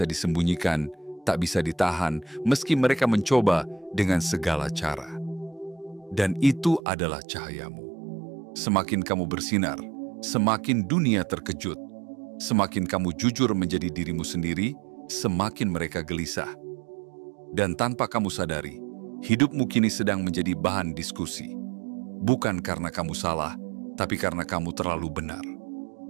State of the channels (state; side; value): drops out; left; at 6.8 s